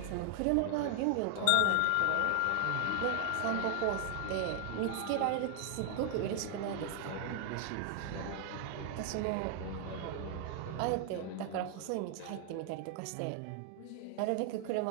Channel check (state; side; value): different; both; correlation 0.00